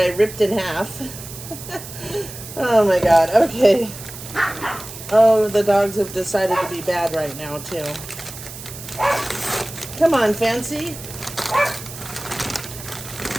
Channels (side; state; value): right; noise; hiss, 13 dB below the sound